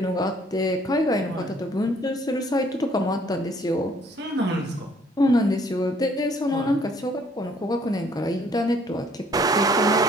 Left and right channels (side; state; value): both; normal; correlation 0.62